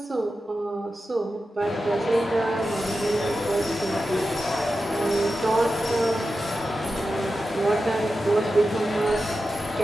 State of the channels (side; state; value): both; normal; correlation 0.91